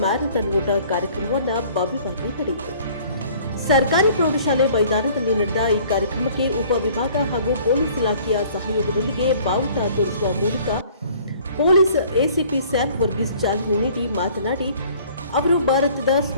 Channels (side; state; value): both; inverted; correlation -0.54